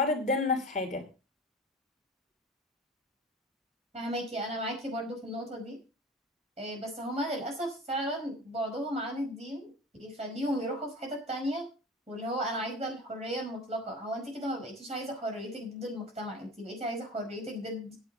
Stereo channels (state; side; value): normal; both; correlation 0.34